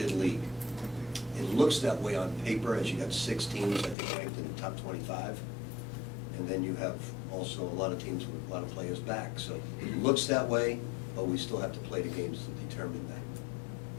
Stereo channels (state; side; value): drops out; right; at 4.0 s